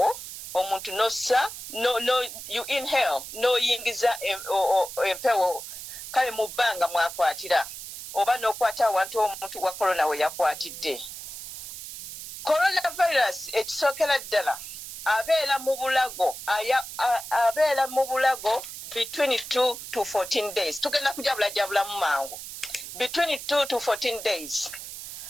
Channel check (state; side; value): noise; right; hiss, 10 dB below the sound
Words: omuntu nossa no you inhale no yingiza empewo kale mu bbanga mwakwatira oba n'okwata awantu omuntu wa corona we yakwatidde. Coronavirus ekisookera ddala abeera mu bulago between 2 to 14 days. Tugenda kujabula mu mangu. Between 2 to 14 days.